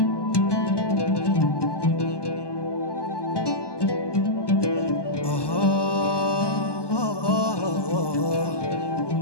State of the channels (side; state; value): right; late; 1.2 ms